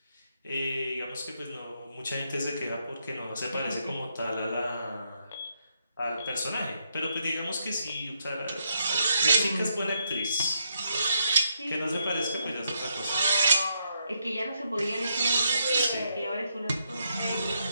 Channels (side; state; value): both; inverted; correlation -0.79